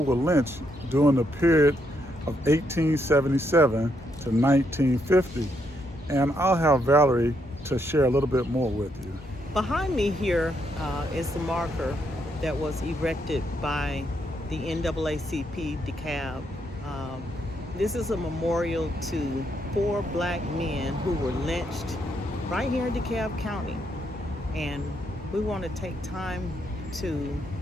lynched during the period of 1877 to 1950. And I'll have Valerie to share a little bit more with you. Behind me here is the marker that was erected by the NAACP DeKalb. This is a memorial to 4 Black men who were lynched right here in DeKalb County. And we want to take time to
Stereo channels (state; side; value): normal; both; correlation 0.76